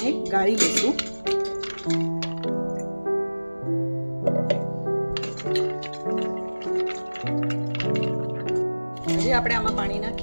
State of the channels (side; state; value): both; inverted; correlation -1.00